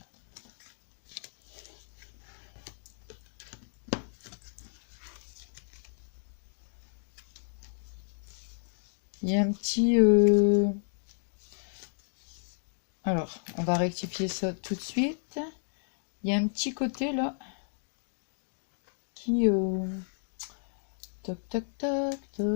y a un petit... Alors, on va rectifier ça tout de suite. Il y a un petit côté là qui... Toc, toc, toc,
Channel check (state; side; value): silent; right; digital silence